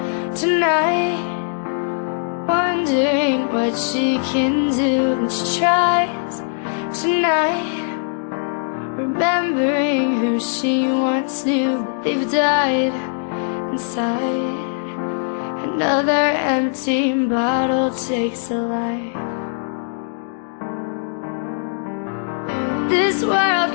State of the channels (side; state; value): right; silent; digital silence